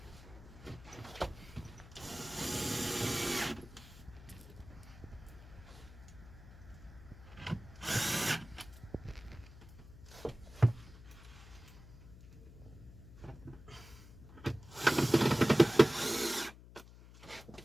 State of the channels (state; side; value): noise; left; hum, 18 dB below the sound